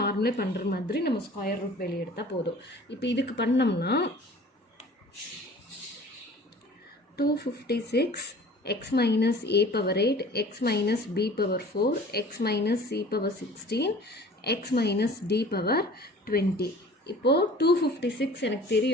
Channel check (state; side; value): normal; both; correlation 0.46